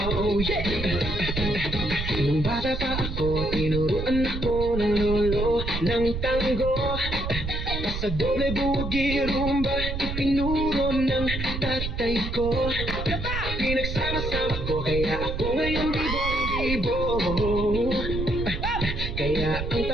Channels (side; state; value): right; noise; rumble, 4 dB below the sound